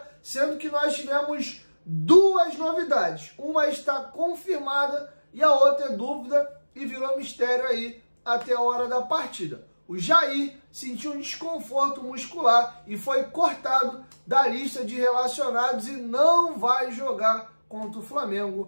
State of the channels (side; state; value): both; inverted; correlation -1.00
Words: sendo que nós tivemos duas novidades. Uma está confirmada e a outra é dúvida e virou mistério aí até a hora da partida. O Jair sentiu um desconforto muscular e foi cortado da lista de relacionados e não vai jogar contra o